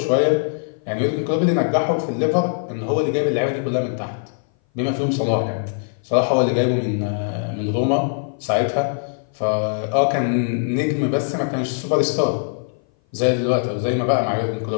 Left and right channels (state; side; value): silent; right; 59 dB below the other